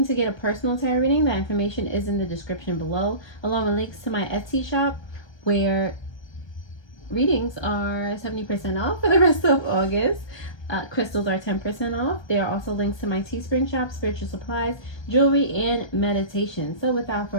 to get a personal tarot reading, that information is in the description below, along with links to my Etsy shop, where readings are 70% off for the rest of August. Crystals are 10% off. There are also links to my Teespring shop, spiritual supplies, jewelry, and meditation. So without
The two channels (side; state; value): right; late; 1.3 ms